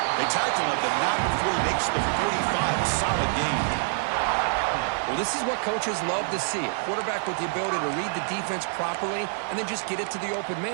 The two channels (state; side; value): silent; left; digital silence